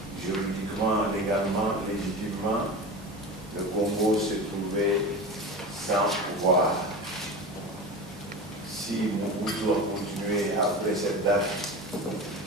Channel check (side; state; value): both; normal; correlation 0.29